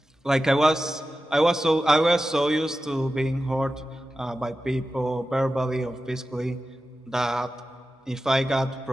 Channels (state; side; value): normal; both; correlation 0.93